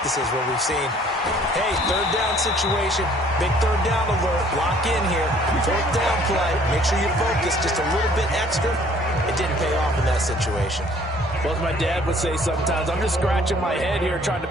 where we've seen, hey, 3rd down situation, Big third down alert. Lock in here. Fourth down play. Make sure you focus just a little bit extra. It didn't pay off in that situation. Well, as my dad would say sometimes, I'm just scratching my head here trying to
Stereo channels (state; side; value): normal; both; correlation 0.57